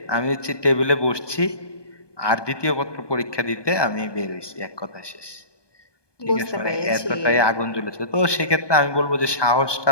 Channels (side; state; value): right; late; 1.2 ms